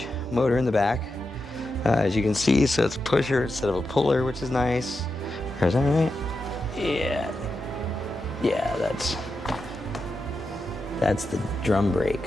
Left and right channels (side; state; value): both; normal; correlation 0.88